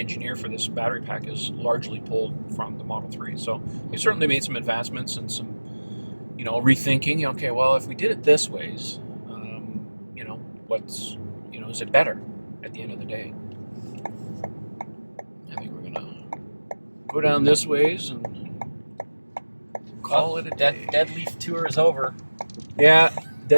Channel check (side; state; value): both; inverted; correlation -1.00